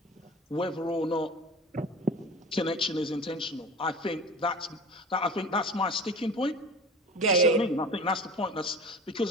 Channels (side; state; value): both; normal; correlation 0.37